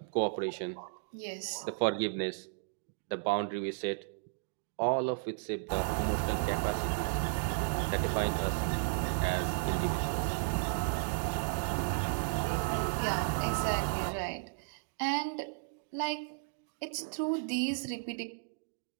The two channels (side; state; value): left; silent; digital silence